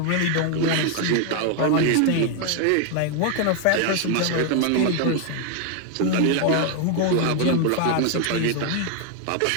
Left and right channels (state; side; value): different; both; correlation 0.00